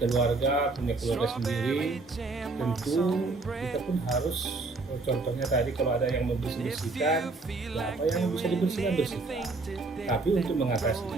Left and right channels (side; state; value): left; quieter; 3.5 dB